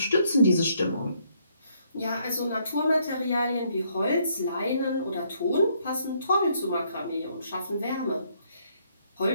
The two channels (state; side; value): inverted; both; correlation -0.70